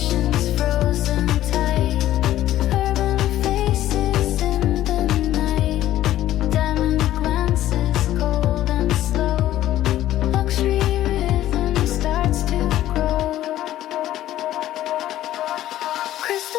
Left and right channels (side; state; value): right; quieter; 13.5 dB